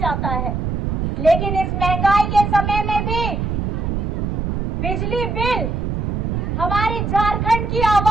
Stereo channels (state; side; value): noise; right; rumble, 1 dB below the sound